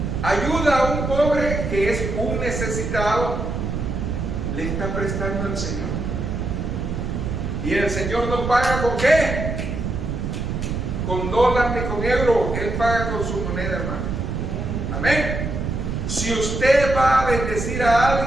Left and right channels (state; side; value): noise; right; rumble, 3 dB below the sound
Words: ayuda a un pobre que es un necesitado, le está prestando al Señor. Y el Señor no paga ¿con qué? Con dólar ni con euro. Él paga con su moneda, hermano. Amén. Si usted va a bendecir a